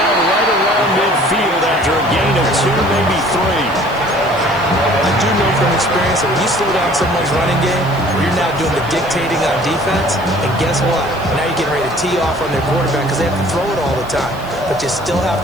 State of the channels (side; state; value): right; noise; hiss, 24 dB below the sound